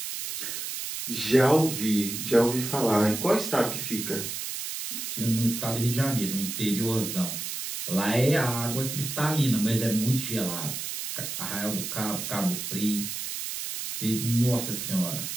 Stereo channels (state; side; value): noise; right; hiss, 5 dB below the sound